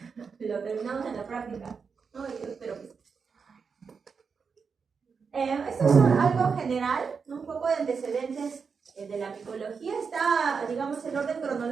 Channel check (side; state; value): left; quieter; 5.6 dB